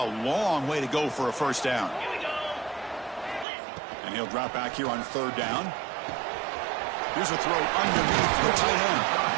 long way to go for a first down. And he'll drop back here on third down. Here's a throw underneath the tight end.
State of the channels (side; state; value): left; drops out; at 3.5 s